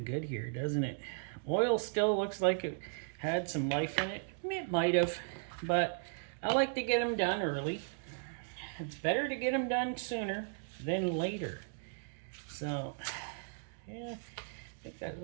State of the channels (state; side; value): silent; left; digital silence